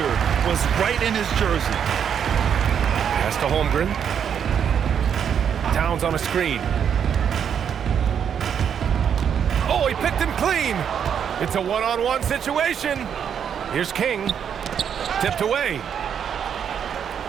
Was right in his jersey. Pass to Holmgren. Towns on a screen. Oh, he picked him clean. It's a one-on-one situation. Here's King. Tipped away.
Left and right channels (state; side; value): quieter; left; 8.1 dB